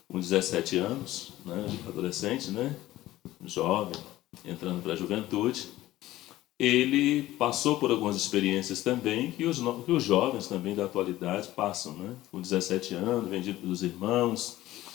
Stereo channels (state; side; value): quieter; right; 15.8 dB